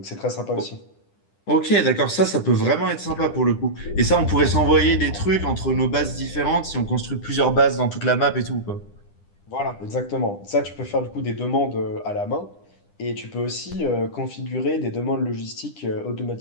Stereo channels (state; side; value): late; right; 10 ms